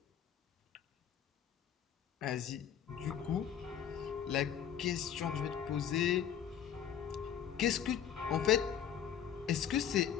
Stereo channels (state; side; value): quieter; right; 9.1 dB